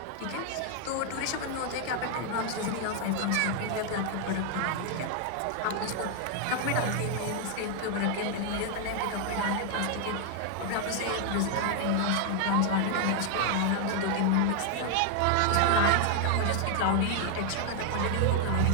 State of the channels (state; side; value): different; both; correlation 0.00